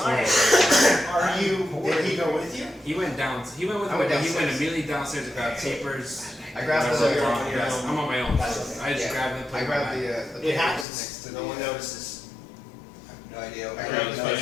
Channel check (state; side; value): drops out; right; at 10.9 s